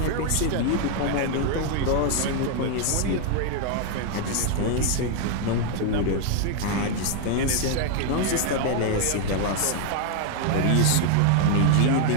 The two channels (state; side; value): different; both; correlation 0.00